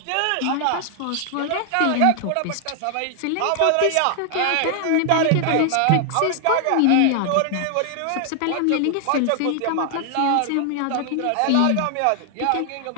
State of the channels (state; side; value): different; both; correlation 0.00